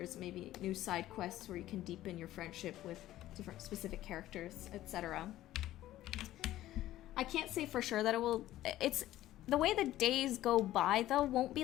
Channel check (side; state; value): right; quieter; 14.4 dB